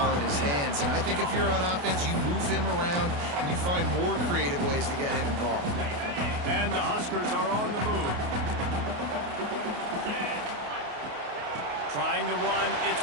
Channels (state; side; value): late; left; 28 ms